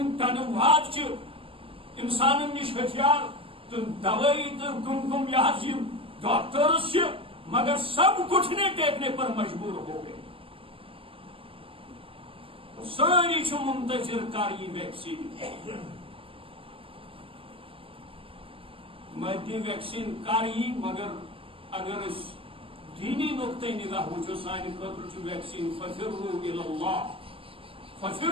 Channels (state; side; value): late; left; 0.26 ms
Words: واد چھِ انسانن نش ہتھیار تو دوائی تو کم یہ ڈاکٹرس سے مگر سب گھٹنے ٹیکنے پر مجبور ہو گئے ساری منتظر کر یہ ویکسین مدی ویکسین کر یہ مگر اگر اس دینی نقطۂ نگاہ وچو سانہ خاطر ویکسین ففروا الی اللہ